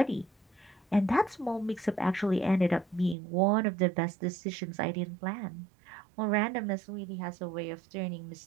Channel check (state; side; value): drops out; left; at 3.2 s